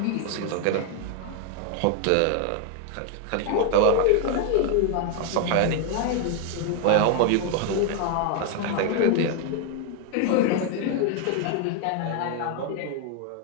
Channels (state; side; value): different; both; correlation 0.00